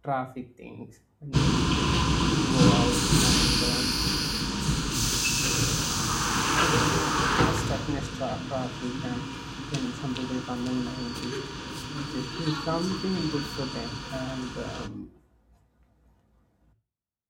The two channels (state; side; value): identical; both; correlation 1.00